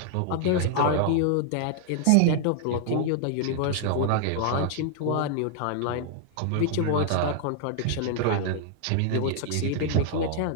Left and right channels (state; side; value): different; both; correlation 0.00